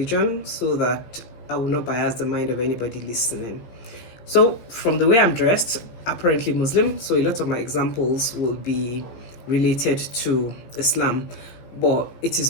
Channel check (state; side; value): late; right; 17 ms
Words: so that I will not bias the mind of anybody listening. So, from the way I'm dressed, apparently Muslim, so a lot of my examples will be related to Islam, but it is